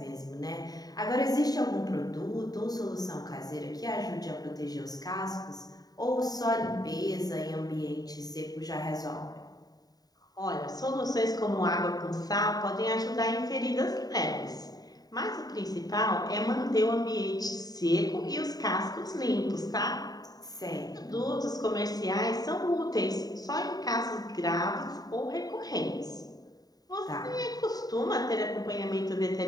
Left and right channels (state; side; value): late; right; 0.18 ms